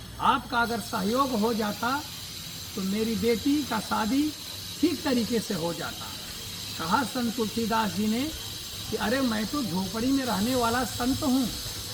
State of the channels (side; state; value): both; identical; correlation 1.00